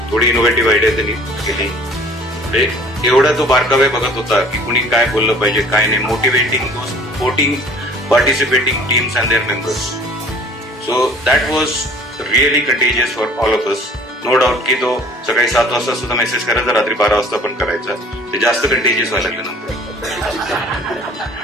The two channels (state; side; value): normal; both; correlation 0.51